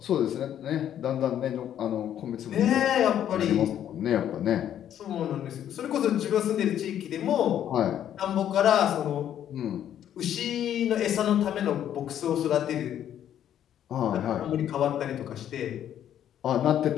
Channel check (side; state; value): right; quieter; 10.5 dB